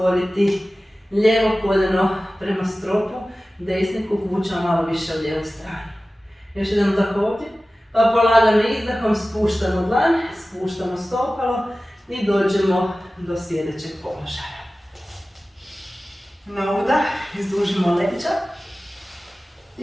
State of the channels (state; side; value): normal; both; correlation 0.96